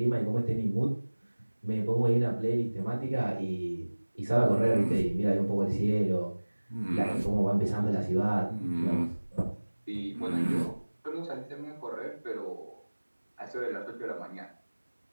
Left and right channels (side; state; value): both; inverted; correlation -1.00